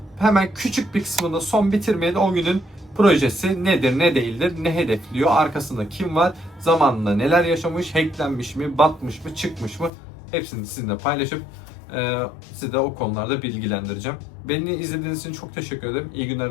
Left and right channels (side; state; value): right; drops out; at 9.9 s